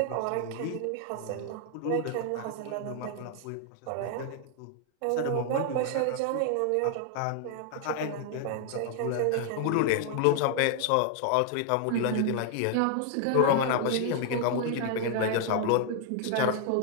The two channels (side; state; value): both; different; correlation 0.00